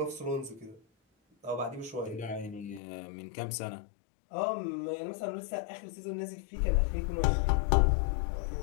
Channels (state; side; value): drops out; right; at 2.8 s